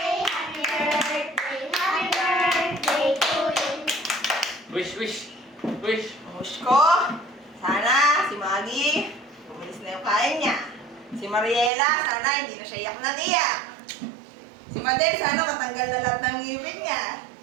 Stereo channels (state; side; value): drops out; left; at 11.7 s